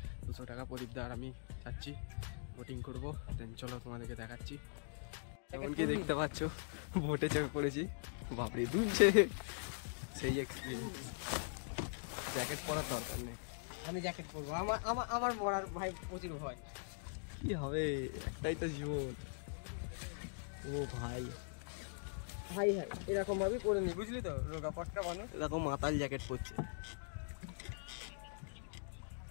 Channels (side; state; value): right; silent; digital silence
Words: 200 টাকা। প্রদীপদা আর আমি যাচ্ছি, বোটিং করব। দেন চলো তোমাদেরকে দেখাচ্ছি। এমনকি দেখতে পাচ্ছ বোটে চেপে পড়েছি, বাপরে দুলছে, সেই এক্সপিরিয়েন্স। জ্যাকেট পরার দরকার নেই, আমি জ্যাকেট পরবো। আমার মরার ভাই প্রচুর ভয়। কি হবে, একটাই তো জীবন। ও ভাই ভাই হ্যাঁ, এরকম ভাবেই করে নি, বুঝলি তো, রোগা পটকা মানুষ এরকম মাতাল জ্যাকেট পরছে।